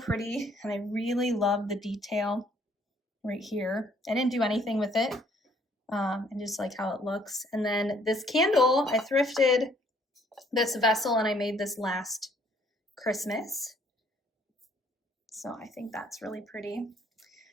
and I really love the detail right here. I didn't do anything with it. I just like how it looks. And then this candle, I thrifted this vessel, and I made this last Christmas. So I think that's really pretty.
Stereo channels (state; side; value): normal; both; correlation 0.63